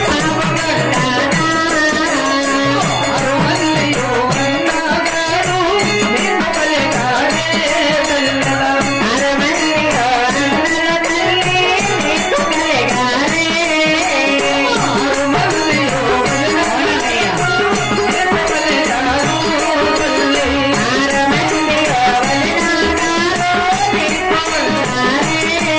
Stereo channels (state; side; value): identical; both; correlation 1.00